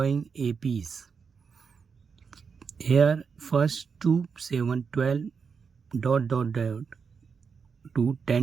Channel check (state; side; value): quieter; left; 5.8 dB